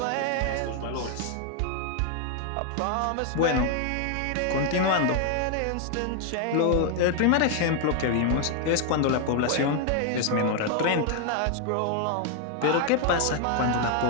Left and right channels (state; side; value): different; both; correlation 0.00